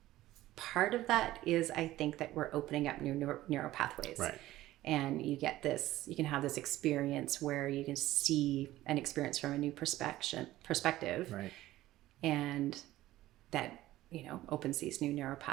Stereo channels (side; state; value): left; quieter; 15.6 dB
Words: part of that is, I think, that we're opening up new neural pathways. Right. And you can have this experience where you can see an experience from a new perspective. Right. And that, opens these new neural